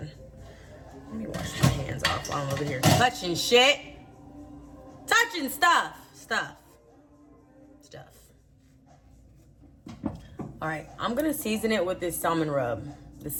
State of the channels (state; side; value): identical; both; correlation 1.00